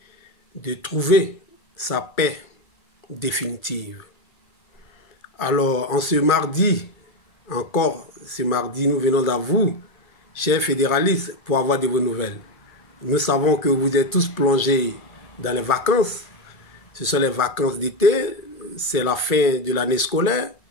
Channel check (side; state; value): right; late; 1.6 ms